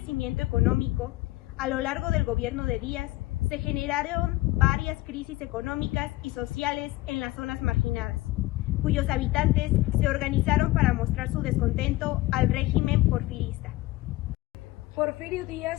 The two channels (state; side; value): quieter; right; 18.4 dB